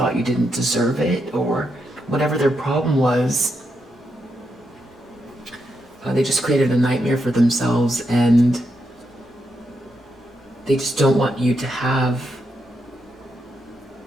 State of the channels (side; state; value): both; normal; correlation 0.82